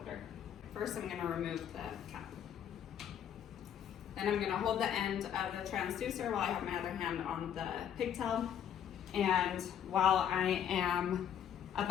First, I'm going to remove the cap. Then I'm going to hold the end of the transducer while I have my other hand on the pigtail. And while I am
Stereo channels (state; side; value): quieter; right; 9.3 dB